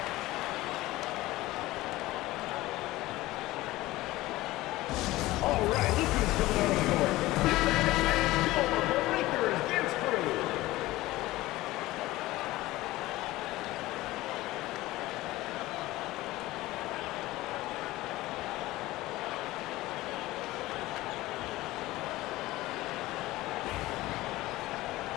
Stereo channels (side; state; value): right; quieter; 18.0 dB